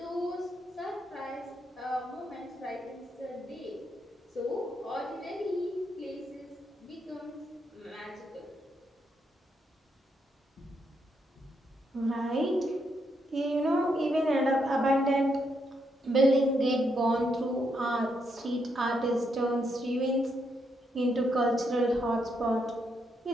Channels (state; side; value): normal; both; correlation 0.78